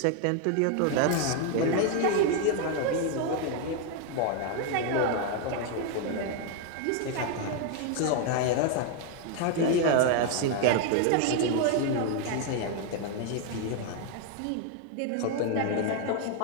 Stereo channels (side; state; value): both; different; correlation 0.01